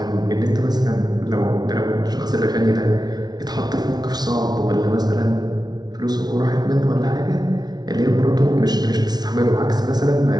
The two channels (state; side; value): late; left; 0.19 ms